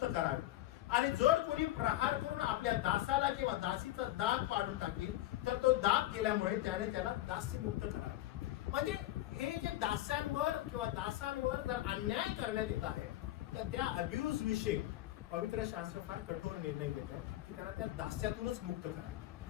करावे, आणि जर कोणी प्रहार करून आपल्या दासाला किंवा दासीचा दाग पाडून टाकेल तर तो दाग गेल्यामुळे त्याने त्याला दास्यमुक्त करावे. म्हणजे हे जे दास्यांवर किंवा दासांवर जर अन्याय करण्यात येत आहे तर त्या अब्यूज विषयी पवित्र शास्त्र फार कठोर निर्णय घेत आहे की त्यांना त्या दास्यातूनच मुक्त करा.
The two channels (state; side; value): quieter; right; 15.2 dB